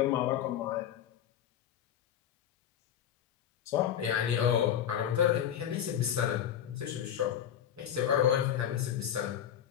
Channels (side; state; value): right; quieter; 9.9 dB